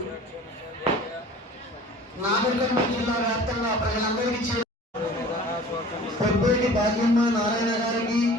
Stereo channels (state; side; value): normal; both; correlation 0.45